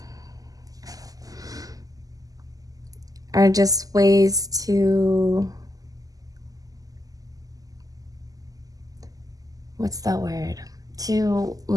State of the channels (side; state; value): left; late; 0.17 ms